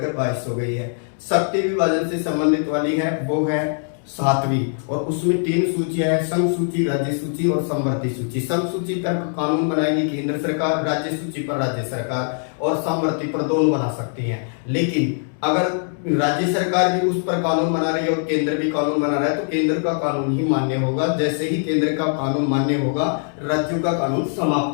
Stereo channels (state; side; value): silent; right; 63 dB below the other